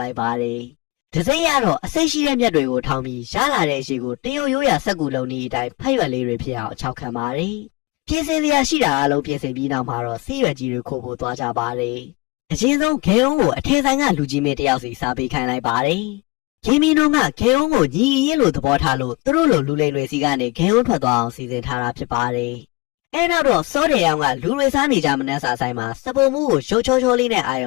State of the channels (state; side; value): quieter; right; 24.8 dB